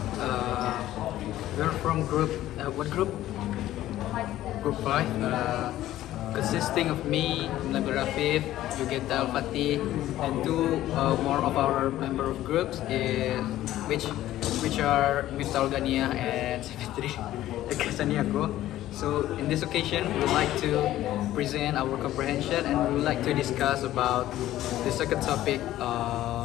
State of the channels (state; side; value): quieter; right; 14.1 dB